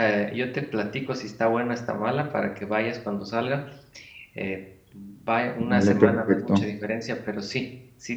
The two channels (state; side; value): identical; both; correlation 1.00